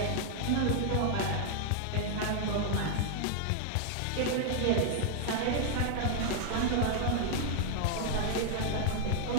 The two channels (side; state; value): both; different; correlation 0.00